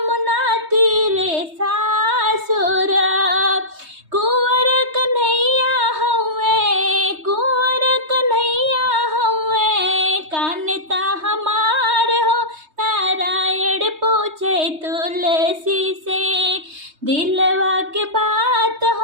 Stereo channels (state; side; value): late; left; 3.2 ms